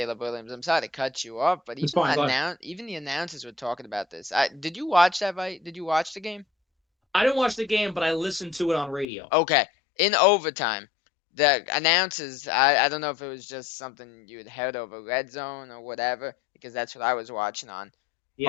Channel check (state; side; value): drops out; right; at 9.1 s